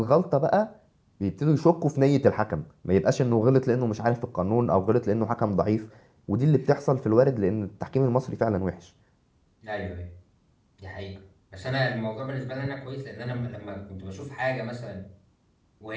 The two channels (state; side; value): identical; both; correlation 1.00